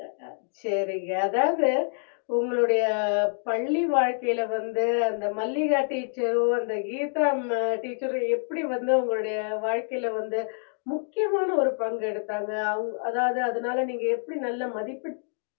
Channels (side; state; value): right; silent; digital silence